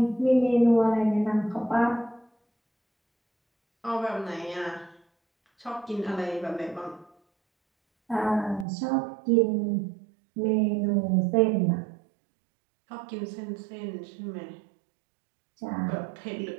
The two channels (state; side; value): drops out; left; at 8.7 s